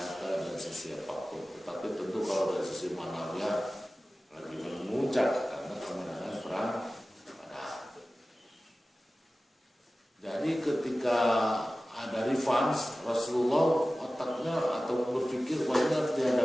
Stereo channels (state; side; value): normal; both; correlation 0.96